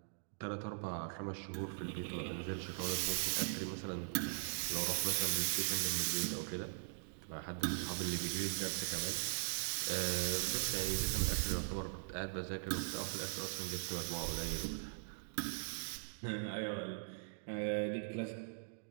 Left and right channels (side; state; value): left; silent; digital silence